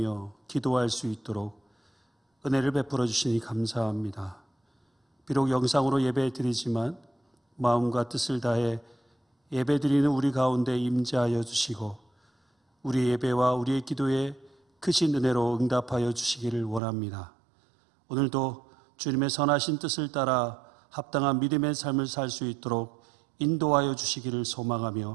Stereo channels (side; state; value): left; drops out; at 16.8 s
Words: 기도할 수 있도록 은혜를 베풀어 주시니 감사합니다. 비록 영상으로 예배 드리지만 마음과 뜻을 다해 예배 드리는 우리 가운데 임재하여 주시고 우리 예배와 우리의 기도에 크신 은혜로 응답하여 주시기를 원합니다. 오늘도 주님의 선하신 뜻을 따라 합당한 믿음의 삶을 살 수 있도록 인도하여 주시기를